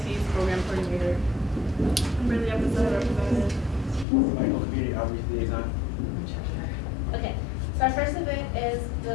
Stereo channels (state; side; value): drops out; right; at 4.0 s